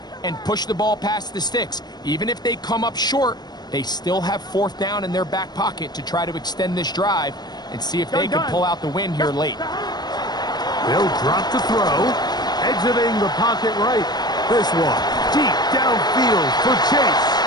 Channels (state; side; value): late; right; 0.20 ms